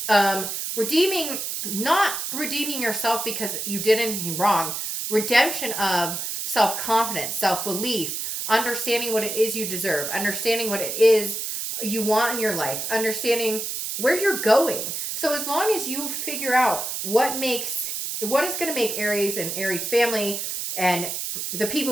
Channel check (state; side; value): noise; right; hiss, 4 dB below the sound